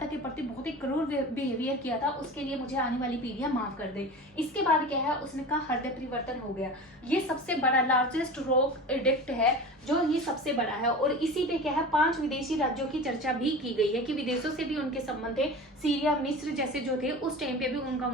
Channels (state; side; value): normal; both; correlation 0.33